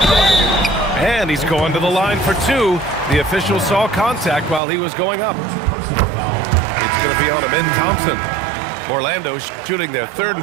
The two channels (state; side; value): drops out; left; at 4.6 s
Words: one. And he's going to the line for two. The official saw contact while he was going up. Personal foul. It's going to be on Amin Thompson. Orlando shooting their third